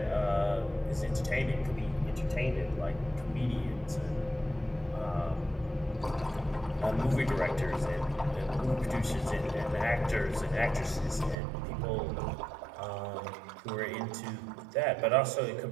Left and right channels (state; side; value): drops out; left; at 11.4 s